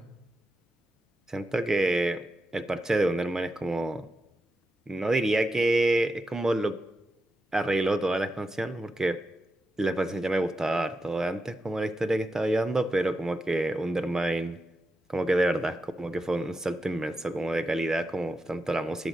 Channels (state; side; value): normal; both; correlation 0.89